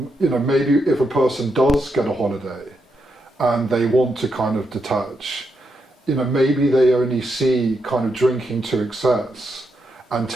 if a person does get a holiday and they want to kind of detach, maybe they only see kind of drinking to excess and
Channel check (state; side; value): normal; both; correlation 0.82